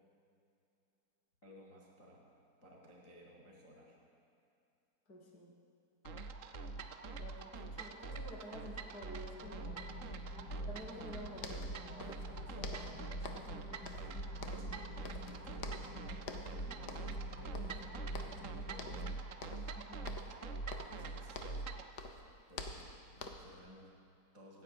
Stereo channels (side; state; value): right; late; 4.9 ms